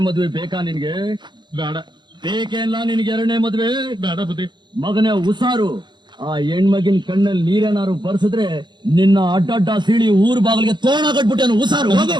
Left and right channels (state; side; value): late; left; 0.22 ms